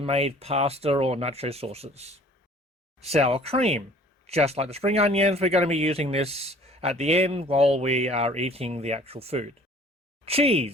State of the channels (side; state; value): both; normal; correlation 0.51